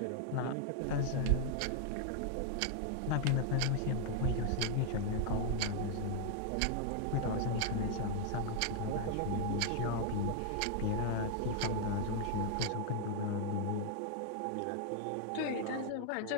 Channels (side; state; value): both; different; correlation 0.00